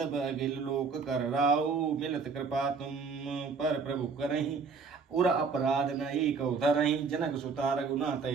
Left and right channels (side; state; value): left; quieter; 5.1 dB